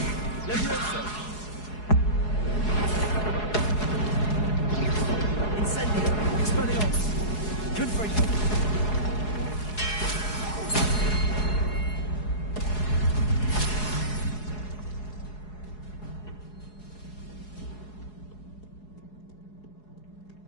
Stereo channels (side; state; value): right; late; 4.7 ms